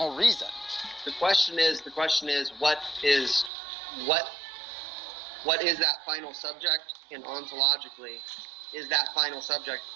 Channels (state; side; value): drops out; left; at 3.5 s